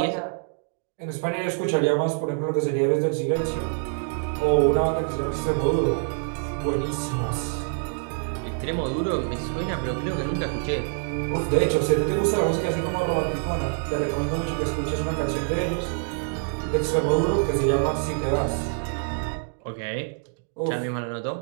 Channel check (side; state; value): left; silent; 61 dB below the other